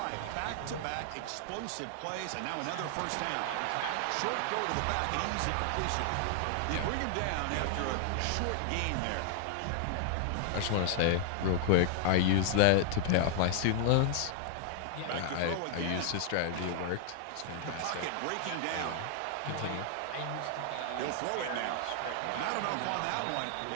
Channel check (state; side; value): different; both; correlation 0.00